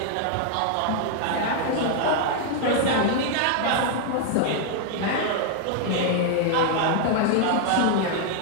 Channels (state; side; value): different; both; correlation 0.00